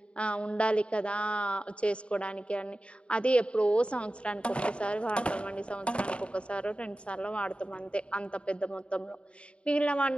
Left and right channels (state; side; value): late; right; 0.058 ms